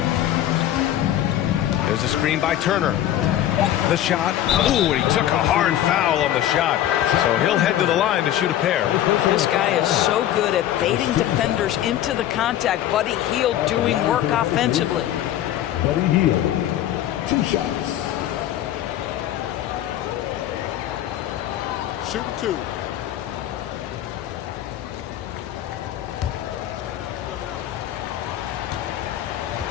There's a screen by Turner. The shot. Ooh, and he took a hard foul on the shot. So he'll head to the line to shoot a pair. This guy is so good at baiting defenders into the contact. Buddy Hield doing work offensively. Buddy Hield, 2 shots. Shooting 2.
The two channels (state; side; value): quieter; right; 12.3 dB